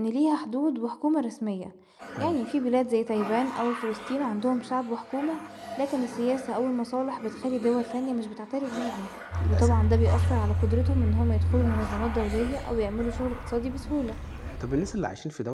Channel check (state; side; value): identical; both; correlation 1.00